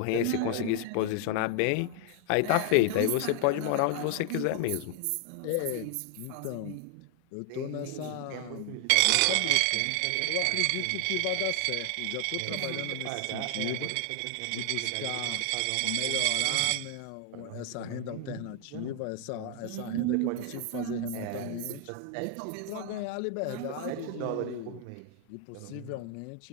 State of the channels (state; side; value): different; both; correlation 0.00